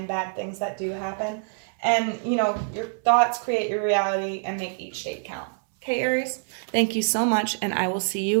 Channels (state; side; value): silent; left; digital silence